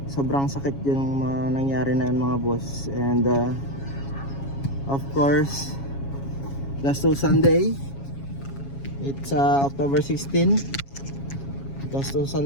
sobrang sakit yung nangyari na yun mga boss. And of course last Sunday, it's October 16. Gastos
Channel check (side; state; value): right; late; 7.3 ms